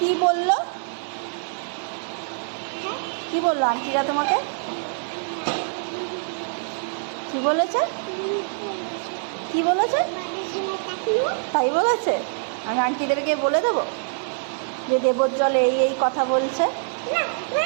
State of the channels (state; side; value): silent; left; digital silence